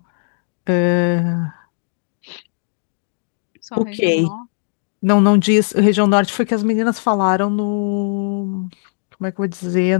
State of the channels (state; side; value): silent; right; digital silence